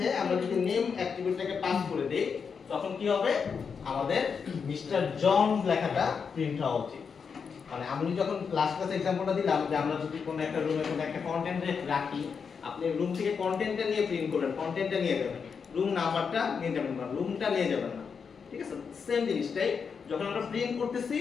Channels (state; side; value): quieter; right; 6.1 dB